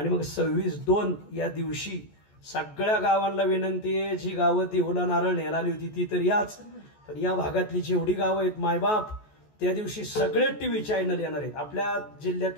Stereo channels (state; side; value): late; right; 14 ms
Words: मग 26/2 या दिवशी सगळ्या गावांना विनंती आहे, जी गावं देहूला नारळ न्यायला आली होती ती तर याच, पण या भागातली जेवढी गावं आहेत मायबाप, त्या दिवशी सगळे टीव्ही चॅनल येणार आहेत. आपल्या